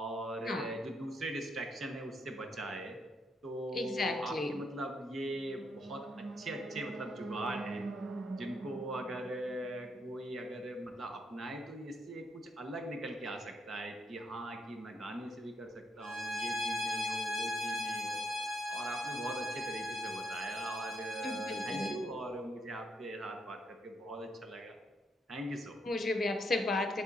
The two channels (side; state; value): both; normal; correlation 0.76